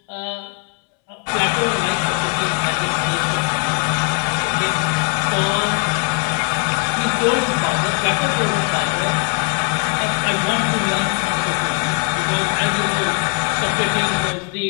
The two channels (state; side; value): quieter; right; 37.1 dB